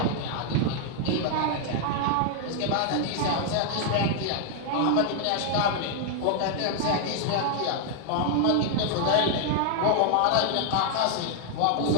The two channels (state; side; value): different; both; correlation 0.00